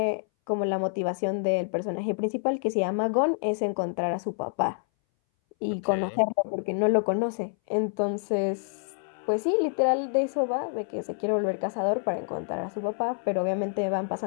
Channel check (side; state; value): right; silent; 59 dB below the other